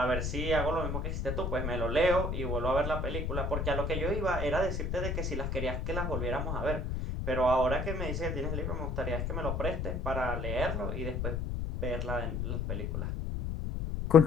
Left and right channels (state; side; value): noise; left; rumble, 2 dB below the sound